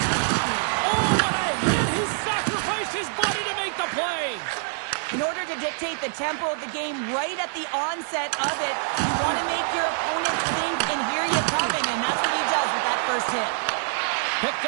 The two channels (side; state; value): left; silent; digital silence